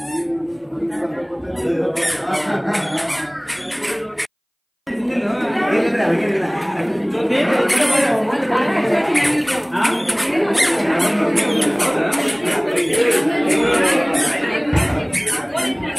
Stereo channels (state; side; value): identical; both; correlation 1.00